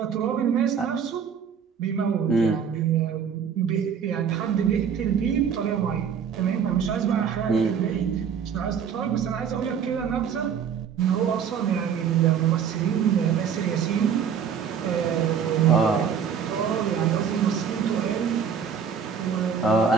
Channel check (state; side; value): quieter; left; 7.3 dB